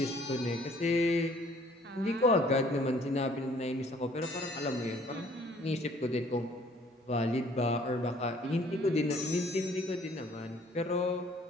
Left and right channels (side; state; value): both; normal; correlation 0.58